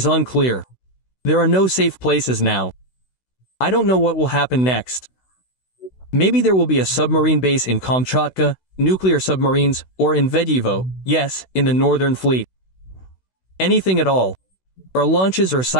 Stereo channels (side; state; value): right; late; 16 ms